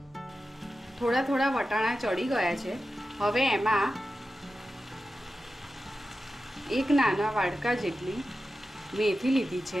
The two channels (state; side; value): normal; both; correlation 0.93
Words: થોડા થોડા વટાણા ચડી ગયા છે। હવે એમાં 1 નાના વાડકા જેટલી મેથી લીધી